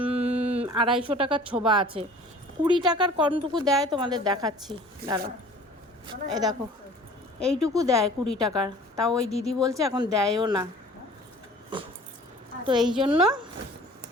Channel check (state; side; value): normal; both; correlation 0.47